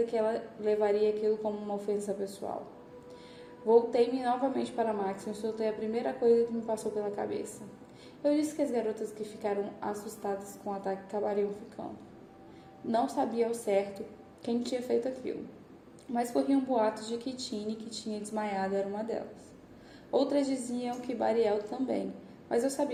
que ela levaria aquilo como uma ofensa pessoal. Voltei-me novamente para Maxon e soltei a primeira coisa que me passou pela cabeça. Eu disse que as garotas que ficaram assustadas com o ataque acabariam ficando. Não sabia ao certo quem tinha feito aquilo. mas corriam boatos de que Tini, que tinha desmaiado, era uma delas. Outras diziam que Bariel também, mas eu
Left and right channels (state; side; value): identical; both; correlation 1.00